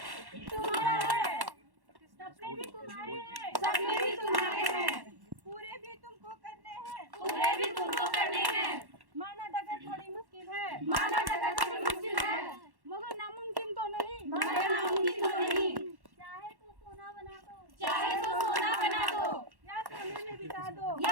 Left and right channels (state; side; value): late; left; 1.1 ms